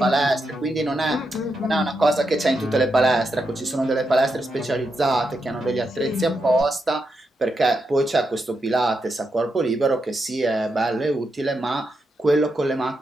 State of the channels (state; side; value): normal; both; correlation 0.84